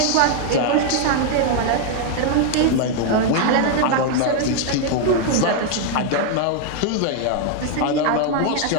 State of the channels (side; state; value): both; different; correlation 0.00